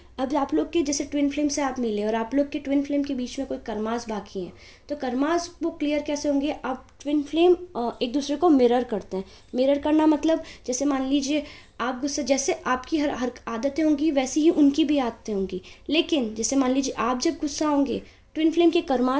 अब आप लोग के जैसे ट्विन फ्लेम से आप मिले और आप लोग के ट्विन फ्लेम के बीच में कोई कर्मास बाकी हैं, तो कर्मास वो क्लियर कैसे होंगे? आप ट्विन फ्लेम एक दूसरे को मिरर करते हैं। मिरर करना मतलब जैसे मान लीजिए आप गुस्सा, जैसे आपकी हर आदतें होंगी वैसी ही उनकी भी आदतें होंगी। लेकिन जैसे मान लीजिए आप जब गुस्सा होंगे, ट्विन फ्लेम के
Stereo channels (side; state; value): both; identical; correlation 1.00